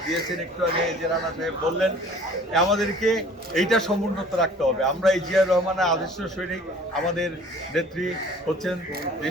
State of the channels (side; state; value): both; normal; correlation 0.50